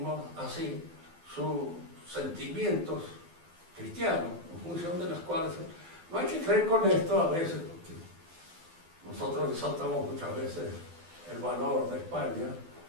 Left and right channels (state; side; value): late; left; 12 ms